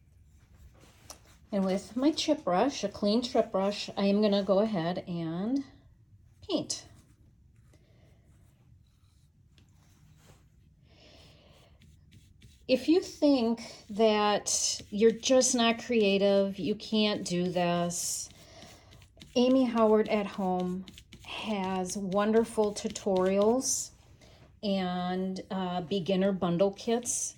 And with my chip brush, a clean chip brush, I am going to go ahead and paint. If you think that you're just not creative, you can't do this, Amy Howard at Home has wonderful tutorials and beginner bundle kits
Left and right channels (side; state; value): both; identical; correlation 1.00